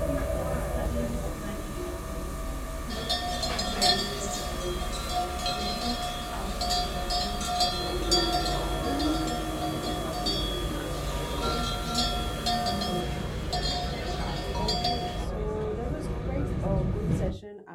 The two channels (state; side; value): identical; both; correlation 1.00